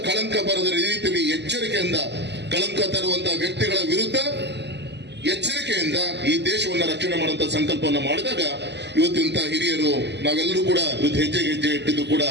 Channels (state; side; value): late; left; 0.50 ms